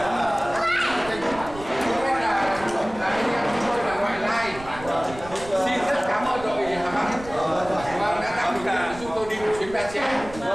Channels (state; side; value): noise; right; rumble, 15 dB below the sound